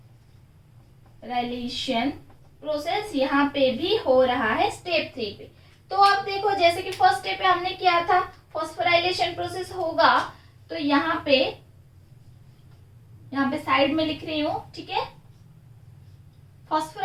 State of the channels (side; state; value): both; identical; correlation 1.00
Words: प्रोसेस यहाँ पे भी हो रहा है स्टेप 3 पे। तो अब देखो जैसे कि फर्स्ट स्टेप पे हमने किया था, फॉस्फोराइलेशन प्रोसेस होगा तो यहाँ पे साइड में लिख रही हूं, ठीक है।